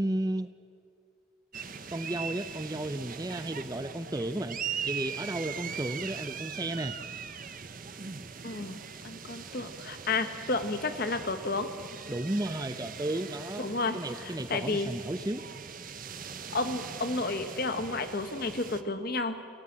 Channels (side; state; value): both; normal; correlation 0.39